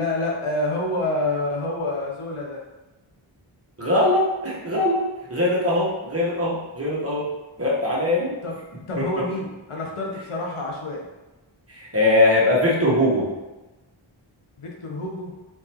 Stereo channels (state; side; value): normal; both; correlation -0.13